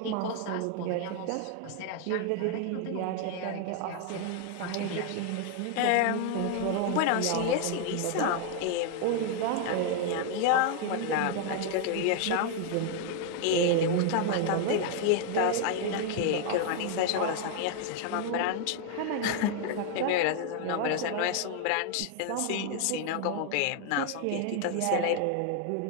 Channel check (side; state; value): both; different; correlation 0.01